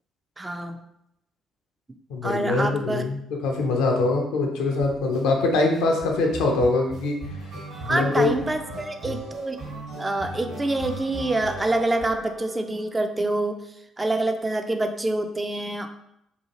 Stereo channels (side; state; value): both; normal; correlation 0.74